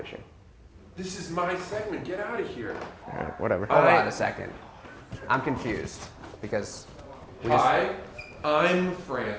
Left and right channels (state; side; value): identical; both; correlation 1.00